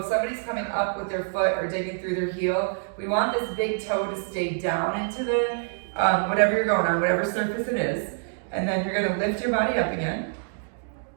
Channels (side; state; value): left; silent; digital silence